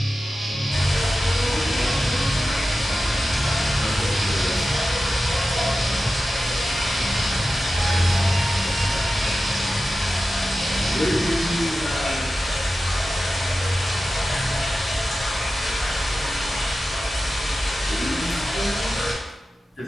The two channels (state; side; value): normal; both; correlation 0.93